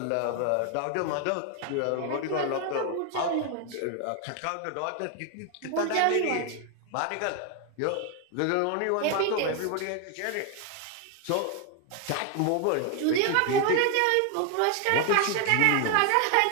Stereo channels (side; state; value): both; different; correlation 0.01